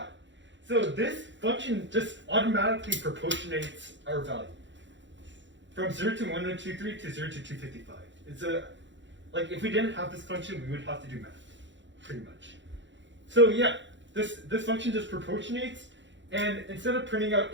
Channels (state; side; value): late; left; 0.54 ms